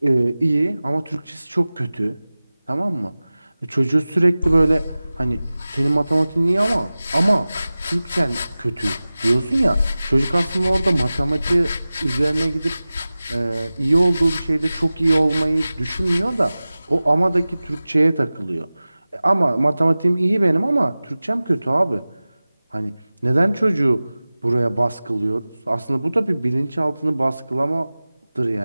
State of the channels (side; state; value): both; inverted; correlation -0.97